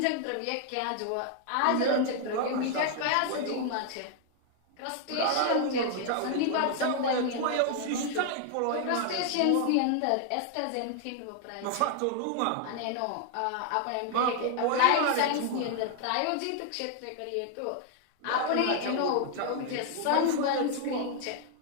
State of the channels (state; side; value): different; both; correlation 0.00